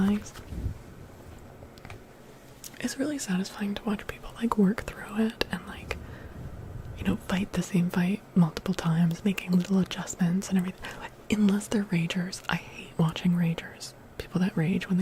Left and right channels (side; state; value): both; identical; correlation 1.00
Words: It's really satisfying to watch people like work through it and like, you know, fight the same fight multiple times, making little adjustments and everything. Like, unless they're ragers. I hate watching ragers. People that rage when